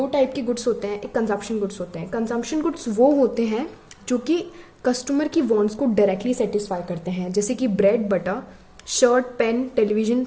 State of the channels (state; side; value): identical; both; correlation 1.00